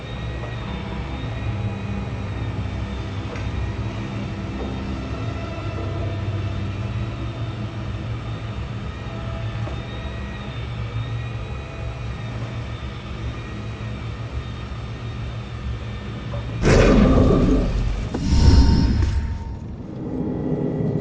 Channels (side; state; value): both; identical; correlation 1.00